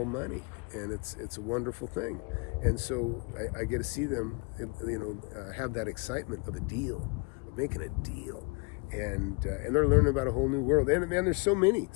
money, and it's a wonderful thing. And so I get to see them, have that excitement of a deal, of making a deal. And they're learning about a whole new world. And there's so many.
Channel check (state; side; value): quieter; right; 30.2 dB